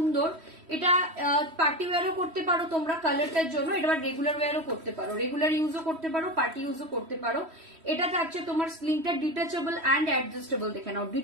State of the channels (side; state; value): left; late; 3.1 ms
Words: এটা পার্টি ওয়্যারও করতে পারো তোমরা কালারটার জন্য, এটা রেগুলার ওয়্যারও করতে পারো, রেগুলার ইউজও করতে পারো, পার্টি ইউজও করতে পারো। এটা থাকছে তোমার স্লিংটা ডিটাচেবল অ্যান্ড অ্যাডজাস্টেবল, দেখে নাও,